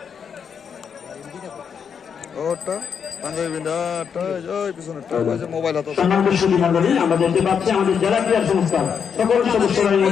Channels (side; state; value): right; quieter; 7.0 dB